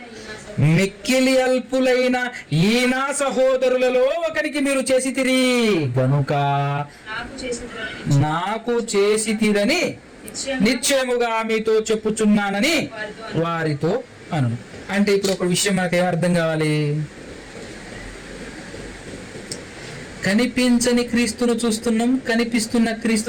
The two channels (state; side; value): identical; both; correlation 1.00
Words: మిక్కిలి అల్పులైన ఈ నా సహోదరులలో ఒకరికి మీరు చేసితిరి గనుక నాకు చేసితిరని నిశ్చయముగా మీతో చెప్పుచున్నానని వారితో అను. అంటే ఇప్పుడు ఒక విషయం మనకు ఏమర్థం కావాలి? కనిపించని క్రీస్తును చూస్తున్నాం, కనిపిస్తున్న